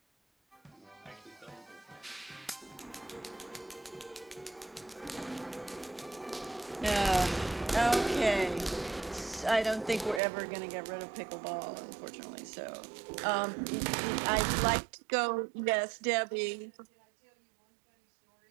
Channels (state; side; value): drops out; left; at 10.2 s